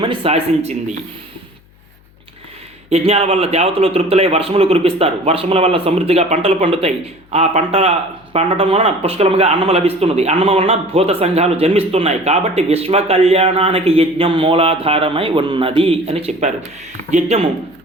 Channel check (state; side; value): noise; left; hum, 30 dB below the sound